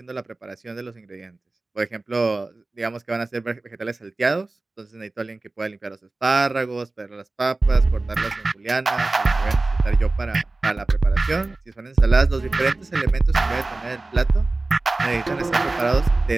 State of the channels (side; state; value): left; quieter; 3.2 dB